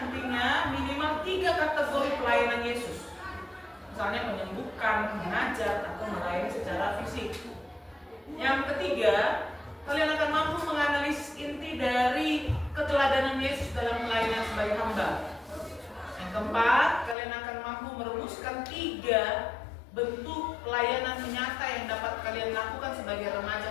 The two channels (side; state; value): right; drops out; at 17.2 s